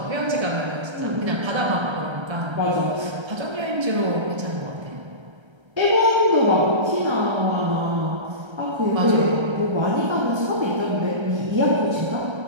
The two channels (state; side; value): late; left; 1.3 ms